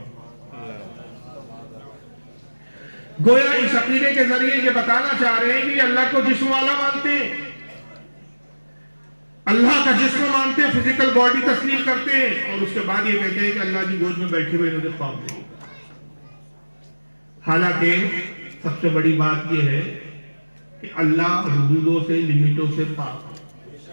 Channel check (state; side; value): inverted; both; correlation -1.00